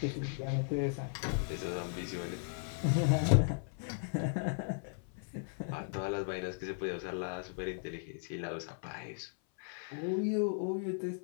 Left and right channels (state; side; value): silent; right; 53 dB below the other